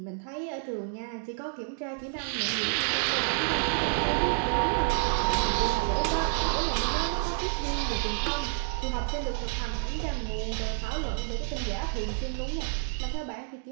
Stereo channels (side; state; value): left; silent; 58 dB below the other